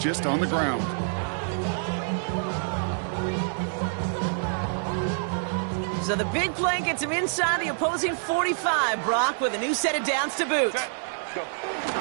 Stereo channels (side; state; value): left; silent; digital silence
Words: on the ground. So the big play gets him inside the opposing 45, Brock, with a new set of downs to boot.